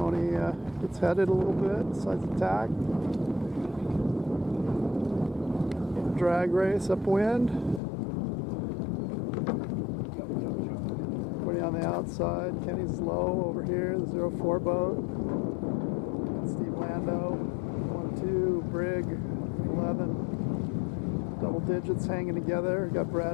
gets headed a little bit, decides to tack. Drag race upwind. Everybody on the outside. Kenny's low over here, the 0-4 boat. Steve Lando, 1-2, Brig, 11. Double digits hanging together. Got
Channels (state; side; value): drops out; right; at 7.8 s